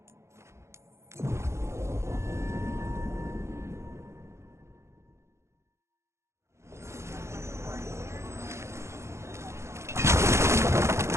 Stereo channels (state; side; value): late; left; 0.13 ms